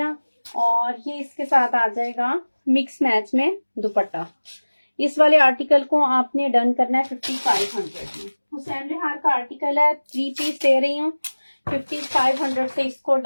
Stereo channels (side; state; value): both; inverted; correlation -1.00